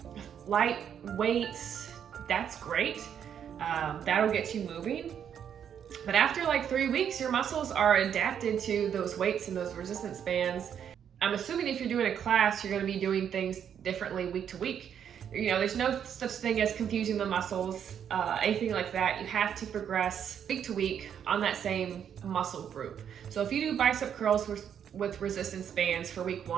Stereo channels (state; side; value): quieter; left; 8.6 dB